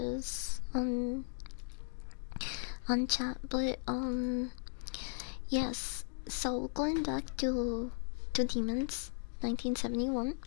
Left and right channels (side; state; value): right; silent; digital silence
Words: on chat, but yes. So going back to Demons, 1971.